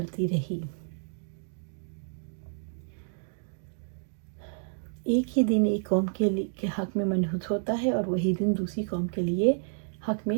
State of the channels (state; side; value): silent; left; digital silence